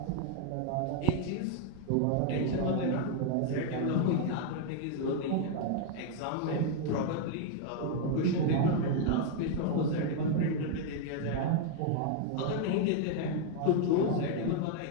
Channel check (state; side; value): different; both; correlation 0.00